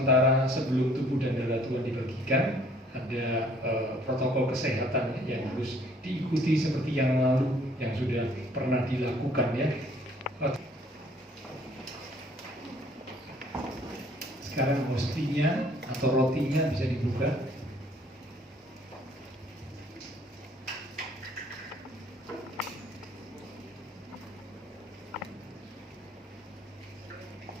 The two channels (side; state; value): both; normal; correlation 0.59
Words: sebelum tubuh dan darah Tuhan dibagikan, ada protokol kesehatan yang harus diikuti seperti yang lalu yang sudah pernah dilakukan ya. Sekarang hostinya atau rotinya bisa dibuka.